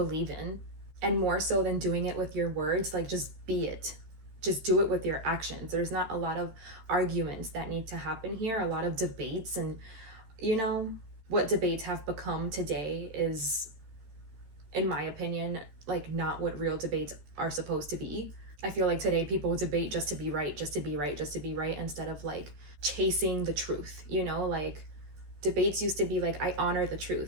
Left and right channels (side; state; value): left; late; 13 ms